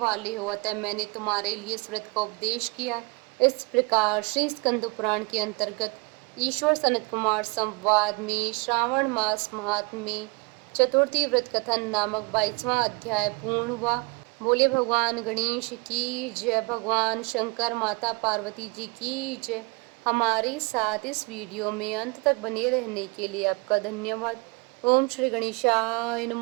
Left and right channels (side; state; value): left; quieter; 29.9 dB